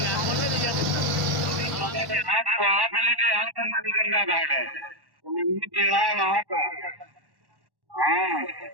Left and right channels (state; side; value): late; left; 1.1 ms